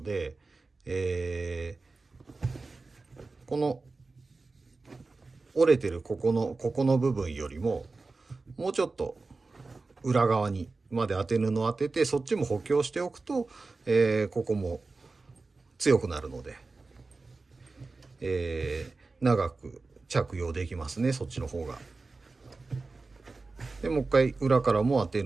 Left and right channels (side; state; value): left; quieter; 3.8 dB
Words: で、この折れてるここの部分よりももうちょっと裏側にまで当て布を当てて、そっちも補強しておくと、ここも強くなるので、長く着用できますね、そっちの方が。でもう一回裏からもア